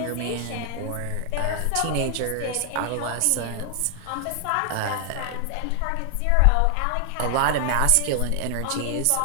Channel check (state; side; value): different; both; correlation 0.00